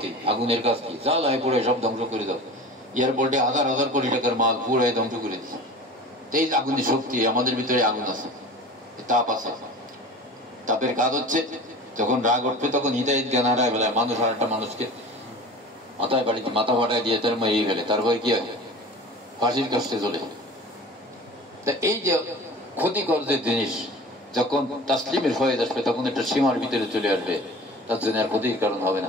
আগুনের কাজ কি? জ্বালায় পুড়ে সব ধ্বংস করে দাও। এয়ারপোর্টে 1000 কোটি টাকার মাল পুড়ে ধ্বংস করে দিচ্ছে। এই আগুনের শক্তি, আমাদের ভিতরে আগুন আছে, তাপ আছে। তাপের কাজ হচ্ছে, যখন রাগ উঠবে তখন হিদায়াত জ্ঞান হারায় ফেলায় মানুষ, আর একটা মানুষকে মাথায় বাড়িতে মাথা ফাটায় দিয়ে তার মেরে ফেলে, তারপরে কি হয়? ফাঁসির কাছে চলে। তা এই যে ক্ষতিকর যে জিনিস, যখন তাসলিমের ফয়েজ আসবে, তখন একটা সীমার ভিতরে চলে আসবে, তার জন্য আর ক্ষতির কারণ হবে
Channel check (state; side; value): normal; both; correlation 0.38